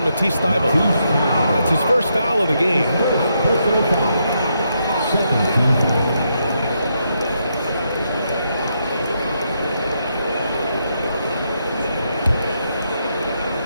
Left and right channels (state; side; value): inverted; both; correlation -0.80